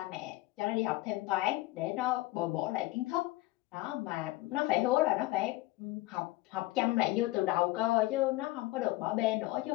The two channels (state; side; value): quieter; right; 18.8 dB